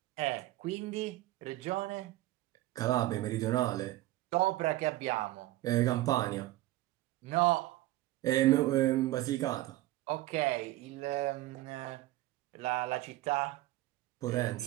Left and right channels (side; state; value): left; quieter; 16.7 dB